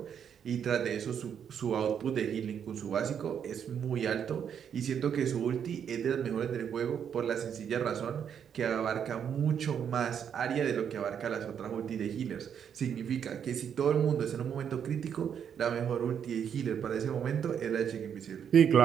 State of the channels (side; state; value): left; quieter; 8.2 dB